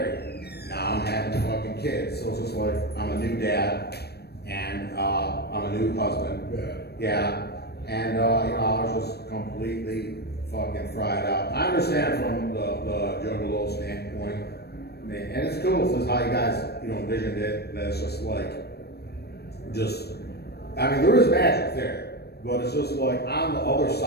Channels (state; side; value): late; right; 0.47 ms